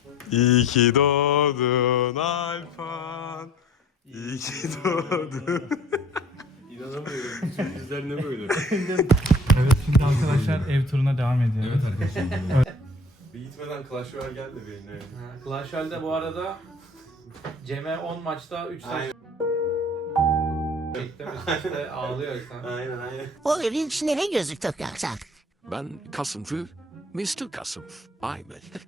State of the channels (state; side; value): normal; both; correlation 0.50